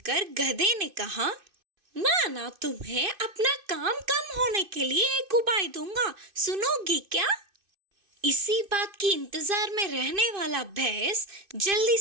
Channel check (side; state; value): left; late; 2.5 ms